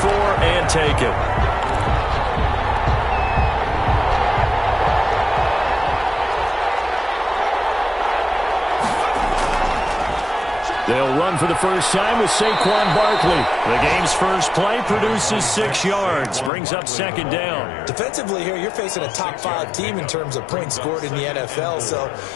and taken. They'll run for the first time with Saquon Barkley. The game's first play produces 6 yards, brings up second down. Defensively here, you're facing a top 5 team in terms of points scored in the NFL. So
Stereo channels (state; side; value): drops out; right; at 16.5 s